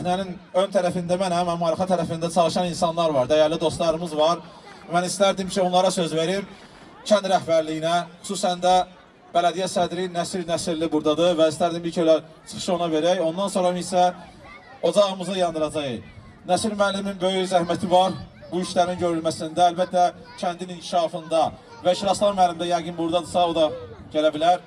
ön tərəfində mənəm, amma arxa tərəfində çalışan insanlar var, dəyərli dostlarımız var. Mən istərdim ki, onlara söz verim, kənd rəhbərliyinə, xüsusən də bələdiyyə sədri Nəsir Nəsirli buradadır və istərdim bir köylə çıxışı ona verək, ondan sonra isə ocağımızı yandıracaq. Nəsir müəllimin böyük zəhməti var bu işlərin görülməsində, əlbəttə kəndin inkişafında və Şiraslan müəllim də yəqin buradadırsa, o da gələ bilər,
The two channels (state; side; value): identical; both; correlation 1.00